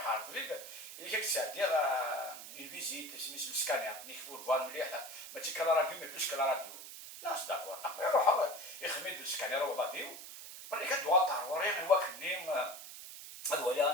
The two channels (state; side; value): noise; right; hiss, 12 dB below the sound